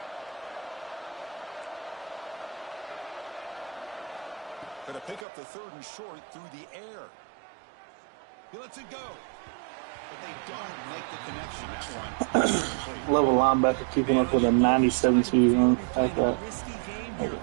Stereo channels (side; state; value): left; drops out; at 5.2 s